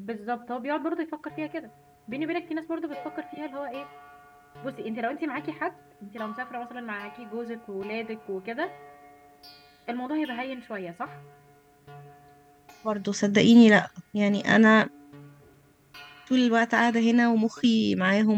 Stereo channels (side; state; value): both; identical; correlation 1.00